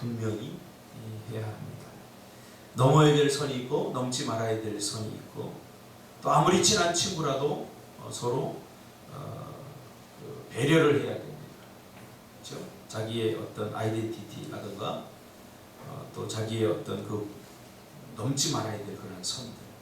해야 합니다. 넘어야 될 선이 있고 넘지 말아야 될 선이 있고 또 아무리 친한 친구라도 서로 배려를 해야 됩니다. 그렇죠? 자기의 어떤 아이덴티티라든가 또 자기의 어떤 그 넘지 말아야 될 그런 선들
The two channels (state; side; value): identical; both; correlation 1.00